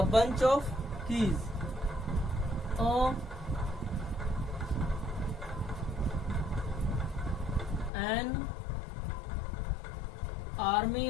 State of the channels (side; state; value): right; drops out; at 7.9 s